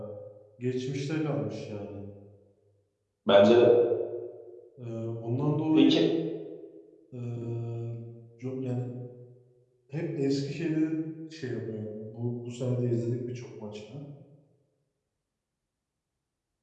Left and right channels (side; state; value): both; identical; correlation 1.00